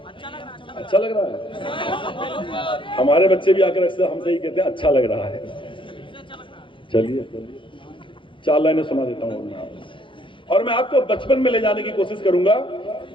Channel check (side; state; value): right; late; 0.25 ms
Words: अच्छा लग रहा है। हमारे बच्चे भी आकर अक्सर हमसे ही कहते हैं अच्छा लग रहा है। चलिए 4 लाइनें सुना देता हूँ और मैं आपको बचपन में ले जाने की कोशिश करूंगा